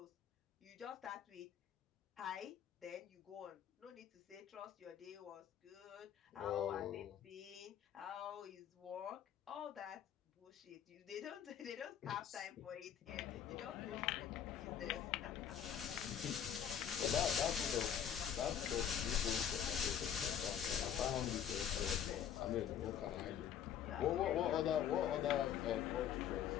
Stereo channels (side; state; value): right; quieter; 9.1 dB